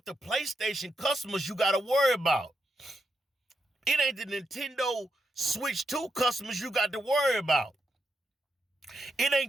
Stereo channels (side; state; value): both; normal; correlation 0.84